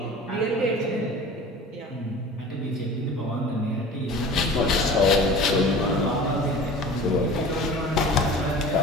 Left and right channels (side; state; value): both; normal; correlation 0.39